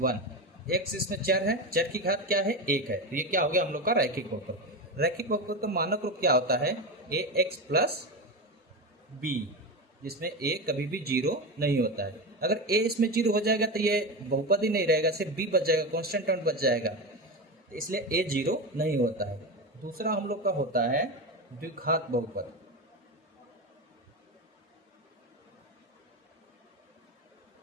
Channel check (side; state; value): both; normal; correlation 0.19